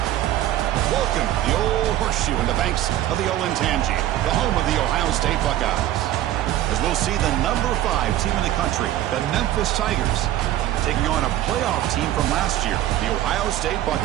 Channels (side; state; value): left; quieter; 13.6 dB